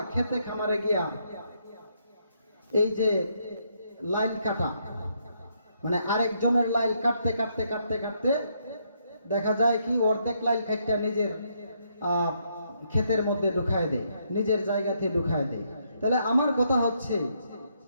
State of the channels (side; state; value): both; inverted; correlation -0.74